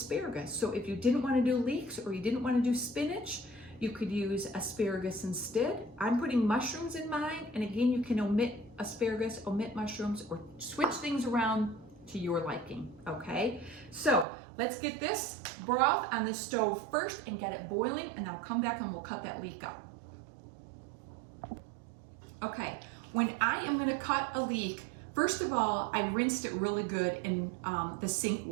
So if you didn't wanna do leeks or you didn't wanna do spinach, you could use asparagus instead. I'm putting mushrooms in mine, and again, you can omit asparagus, omit mushrooms, or switch things around to your liking, okay? So let's get this broth on the stove first and get it boiling, and I'll come back and we'll cut that leek up. Okay, when I am gonna cut a leek, first of all, I rinsed it really good in the sink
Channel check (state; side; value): drops out; left; at 14.2 s